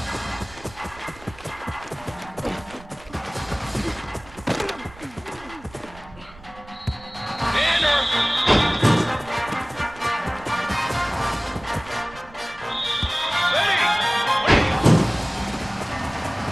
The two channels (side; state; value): right; noise; rumble, 21 dB below the sound